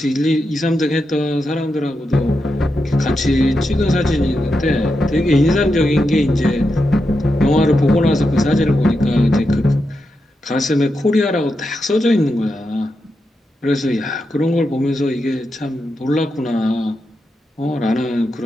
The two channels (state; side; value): normal; both; correlation 0.87